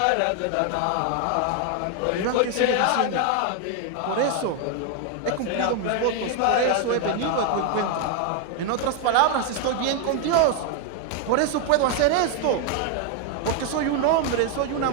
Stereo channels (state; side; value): different; both; correlation 0.01